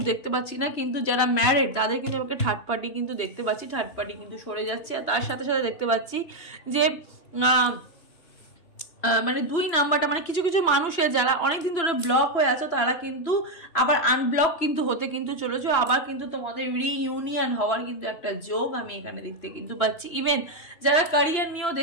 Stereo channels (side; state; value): right; late; 3.0 ms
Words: দেখতে পাচ্ছি না। কিন্তু যারা ম্যারিড তাদের কিন্তু আমাকে থার্ড পার্টি কিন্তু দেখতে পাচ্ছি, থার্ড পার্টি কিন্তু সরে যাচ্ছে। আর তার সাথে সাথে দেখতে পাচ্ছি যে মানে 2 নাম্বারটা, মানে কিছু কিছু মানুষের যারা অনেকদিন ধরে ব্লক হয়ে আছে তারা কিন্তু আবার আনব্লক কিন্তু হতে কিন্তু চলেছে, আবার কিন্তু তোমাদের রিইউনিয়ন হওয়ার কিন্তু একটা যোগ আমি এখানে দেখতে কিন্তু পাচ্ছি। ইভেন যারা ক্যারিয়ার নিয়েও